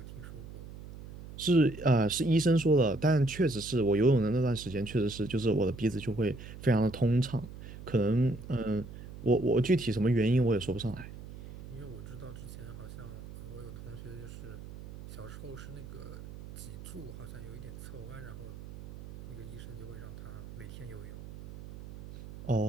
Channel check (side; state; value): right; noise; hum, 13 dB below the sound